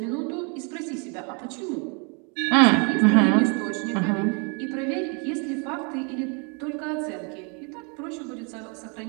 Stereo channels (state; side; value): quieter; left; 35.3 dB